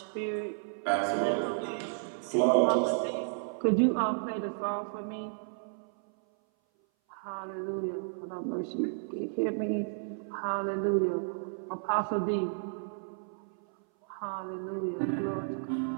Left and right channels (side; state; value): left; silent; 56 dB below the other